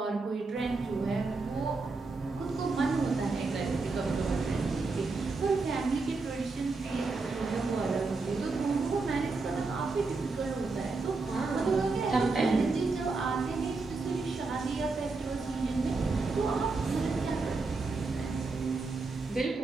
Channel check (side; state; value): left; quieter; 3.9 dB